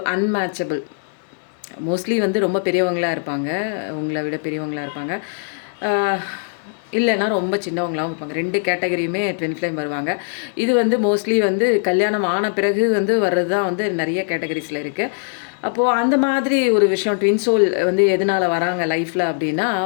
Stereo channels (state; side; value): silent; right; digital silence